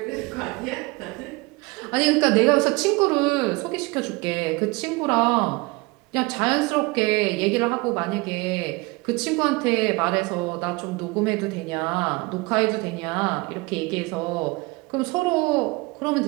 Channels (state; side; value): quieter; left; 24.9 dB